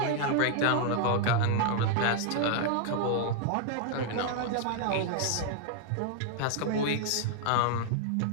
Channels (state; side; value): different; both; correlation 0.00